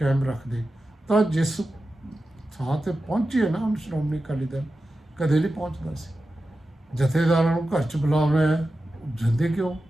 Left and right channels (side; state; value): both; normal; correlation 0.92